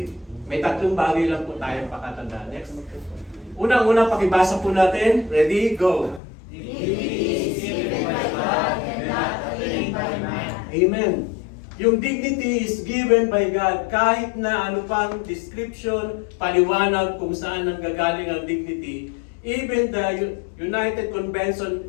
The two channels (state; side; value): drops out; right; at 6.2 s